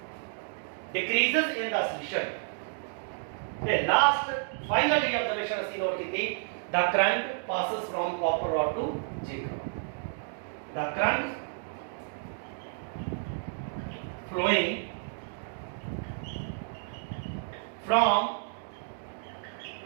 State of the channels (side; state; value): left; silent; digital silence